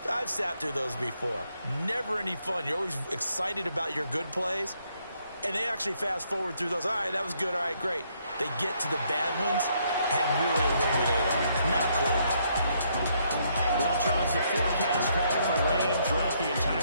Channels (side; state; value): both; inverted; correlation -0.72